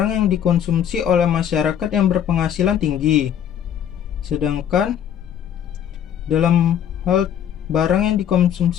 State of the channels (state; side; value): quieter; right; 9.4 dB